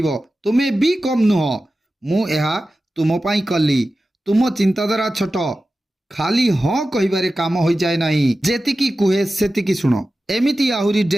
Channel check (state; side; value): normal; both; correlation 0.94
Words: तुमे भी कम नुह मु एहा तुम पाई कली तुम चिंताधारा छोट खाली हाँ कहिबारे काम हो जाए नहीं जेतिकी कुहे सेतिकी सुनो एमिति आहुरी